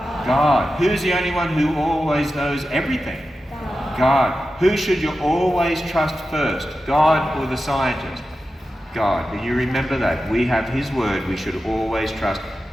God. Who's the only one who always knows everything? God. Who should you always trust first? God or the scientist? God. And you remember that. We have His word. We should always trust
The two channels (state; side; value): normal; both; correlation 0.92